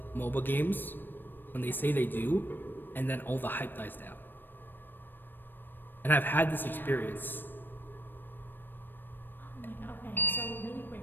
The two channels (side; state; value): right; late; 0.094 ms